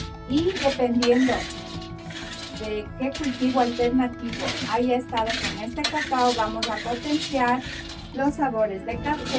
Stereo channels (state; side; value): identical; both; correlation 1.00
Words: y dependiendo de qué cultivo alternativo haya estado con este cacao, vamos a potenciar los sabores de